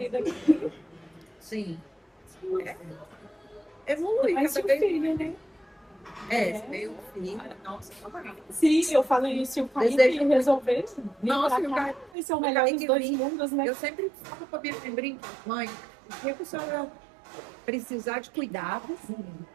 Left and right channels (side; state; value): left; drops out; at 12.1 s